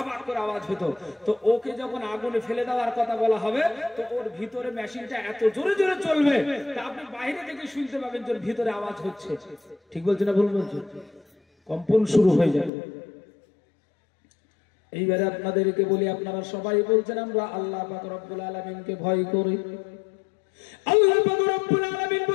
করে আওয়াজ হতো। তো ওকে যখন আগুনে ফেলে দেওয়ার কথা বলা হবে, তো ওর ভিতরে মেশিনটা এত জোরে জোরে চলবে, তা আপনি বাইরে থেকে শুনতে পাবেন যে ভিতরে আওয়াজ হচ্ছে। ঠিক বলছে না ভুল বলছে? কম্পন শুরু হয়ে যাবে। এইবারে আপনাদেরকে বলি, আপনারা সবাই বলছেন আমরা আল্লাহ পাক রব্বুল আলামিনকে ভয় করি। আল্লাহ পাক রব্বুল আলামিন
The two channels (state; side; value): drops out; right; at 12.7 s